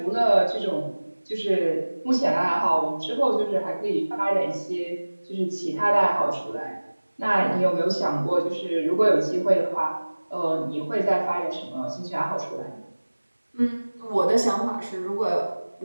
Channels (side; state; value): both; inverted; correlation -1.00